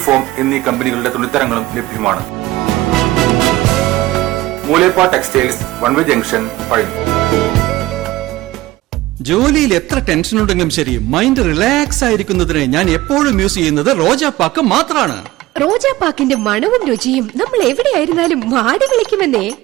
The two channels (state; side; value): quieter; left; 17.5 dB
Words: form എന്നീ കമ്പനികളുടെ തുണിത്തരങ്ങളും ലഭ്യമാണ്. Moolepa textiles, one way junction, Palani. ജോലിയിൽ എത്ര ടെൻഷൻ ഉണ്ടെങ്കിലും ശരി, മൈൻഡ് റിലാക്സ് ആയിരിക്കുന്നതിന് ഞാൻ എപ്പോഴും യൂസ് ചെയ്യുന്നത് റോജാപ്പാക്ക് മാത്രമാണ്. റോജാപ്പാക്കിന്റെ മണവും രുചിയും നമ്മൾ എവിടെയായിരുന്നാലും മാടി വിളിക്കുമെന്നേ.